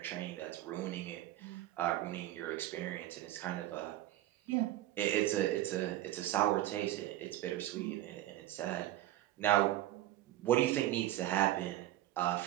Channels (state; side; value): quieter; left; 14.6 dB